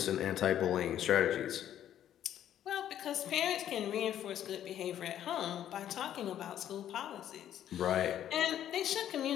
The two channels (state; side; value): quieter; right; 11.0 dB